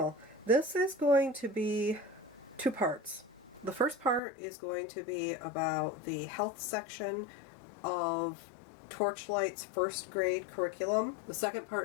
This is going to be two parts. The first part is going to be about the health section of Torchlight's first grade curriculum. The second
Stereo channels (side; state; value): right; drops out; at 4.2 s